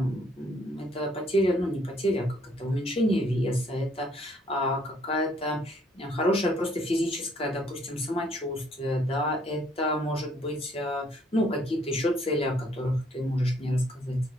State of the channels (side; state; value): both; normal; correlation 0.65